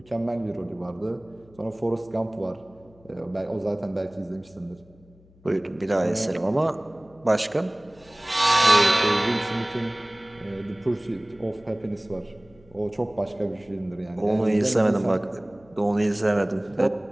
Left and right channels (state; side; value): noise; left; hum, 27 dB below the sound